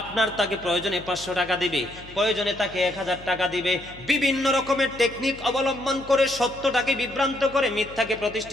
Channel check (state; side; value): noise; left; hum, 19 dB below the sound